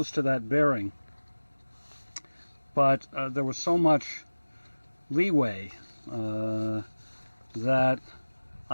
to that bearing, but there was so much leeway that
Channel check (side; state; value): both; inverted; correlation -1.00